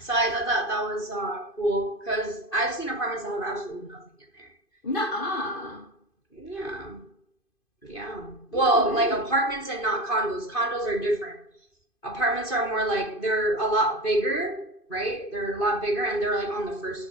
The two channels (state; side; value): late; right; 2.5 ms